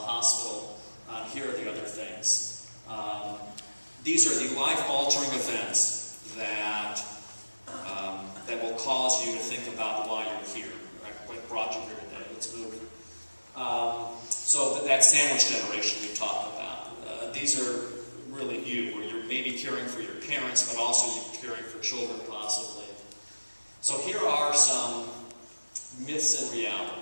Here are the other things. These are the life-altering events that will cause you to think about why you're here, right? What brought you here today. Let's move. So that sandwich generation we talked about. These are really you, where you're maybe caring for your parents, but also you're caring for children possibly. So here are some myths and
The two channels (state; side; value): inverted; both; correlation -1.00